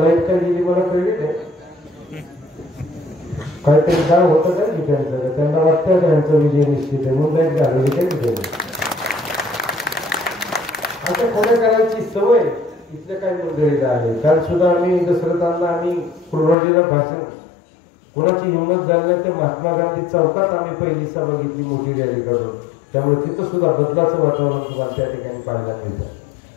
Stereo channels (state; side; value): drops out; right; at 16.6 s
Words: काय गेली मला कळली नाही, काहीतरी काय होतं काय ठिकाणचं, त्यांना वाटतं त्यांचा विजय निश्चित आहे म्हणून लाईट घालवली काय ठिकाणी. आता खोड्या करायची सवय इथल्या काही मंडळीला आहे. काल सुद्धा आम्ही दसरथांना आम्ही कुर्बानीला भाषण, कोणाची हिंमत झाली नाही ते महात्मा गांधी चौकात आम्ही पहिली सभा घेतली मोठी रॅली काढून. त्यामुळे तिथं सुद्धा बदलाचं वातावरण तुम्हाला त्या ठिकाणी पाहायला मिळतं.